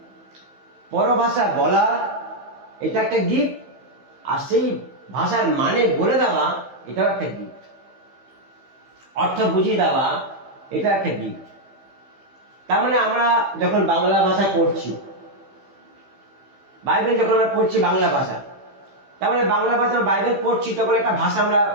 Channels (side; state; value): left; late; 15 ms